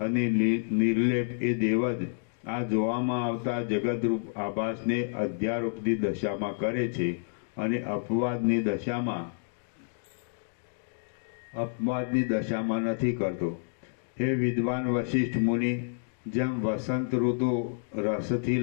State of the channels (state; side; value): silent; right; digital silence